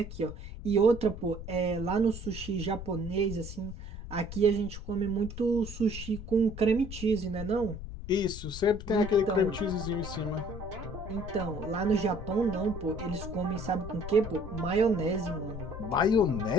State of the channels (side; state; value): left; noise; rumble, 10 dB below the sound